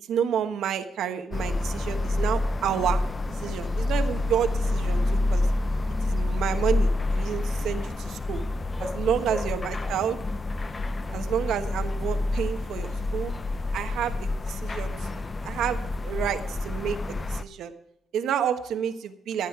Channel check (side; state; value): both; normal; correlation 0.80